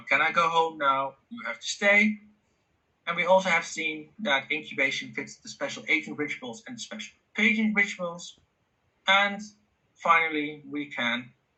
Can I go home now? You have to stay. And we also have seen that incubation fits the special agent rituals and the special patient rituals. And finally, we can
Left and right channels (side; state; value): both; identical; correlation 1.00